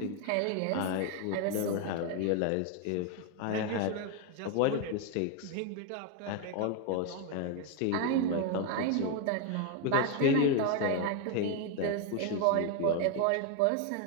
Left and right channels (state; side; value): different; both; correlation 0.01